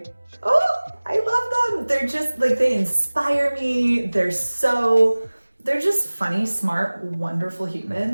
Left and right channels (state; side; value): inverted; both; correlation -1.00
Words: love them. They're just like, they inspire me. They're just funny, smart, wonderful